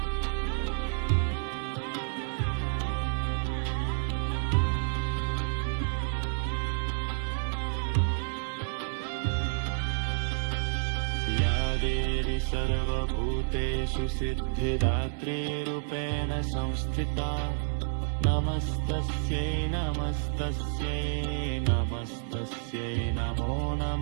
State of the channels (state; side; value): silent; left; 58 dB below the other